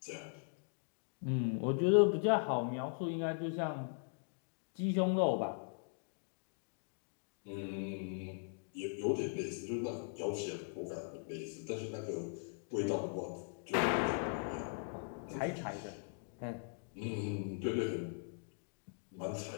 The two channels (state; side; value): silent; right; digital silence